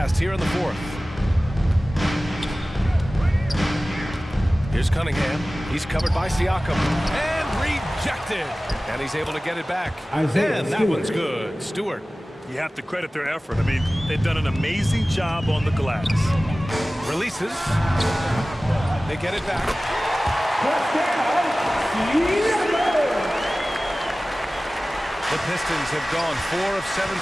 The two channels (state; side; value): normal; both; correlation 0.97